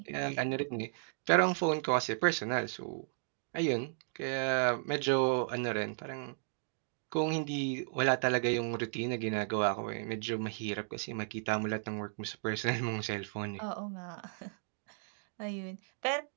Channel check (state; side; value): silent; left; digital silence